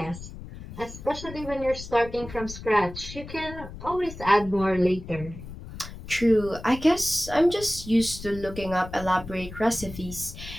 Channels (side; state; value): left; noise; rumble, 12 dB below the sound